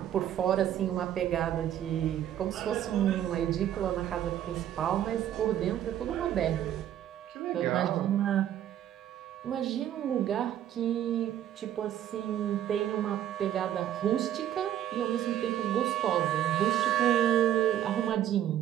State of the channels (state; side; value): quieter; left; 11.2 dB